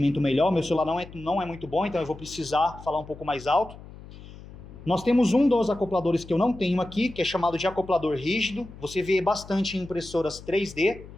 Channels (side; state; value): left; noise; hum, 17 dB below the sound